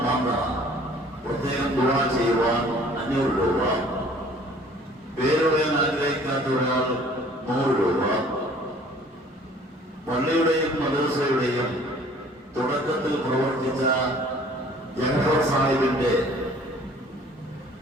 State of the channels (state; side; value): normal; both; correlation 0.53